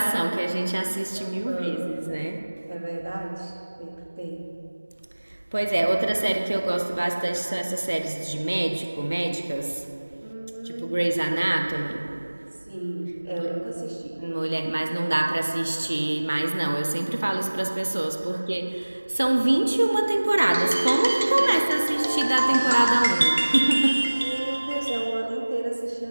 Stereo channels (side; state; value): both; inverted; correlation -1.00